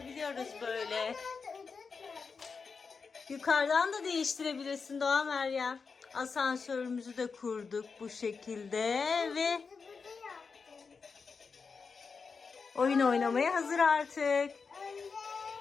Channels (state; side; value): quieter; right; 5.1 dB